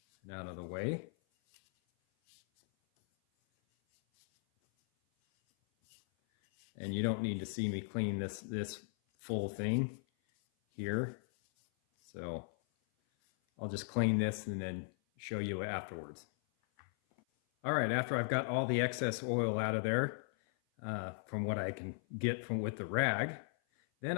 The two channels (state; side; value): silent; right; 53 dB below the other